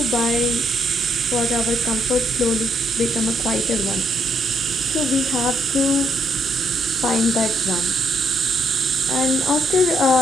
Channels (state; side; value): normal; both; correlation 0.74